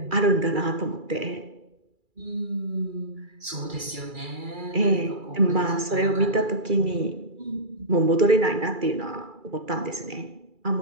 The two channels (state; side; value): late; left; 2.3 ms